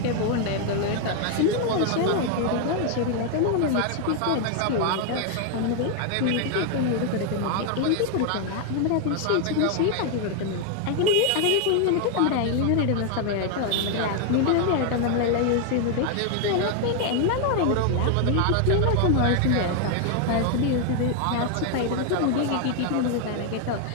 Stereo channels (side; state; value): both; different; correlation 0.00